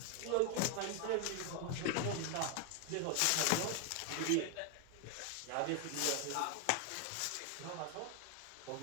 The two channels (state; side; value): different; both; correlation 0.01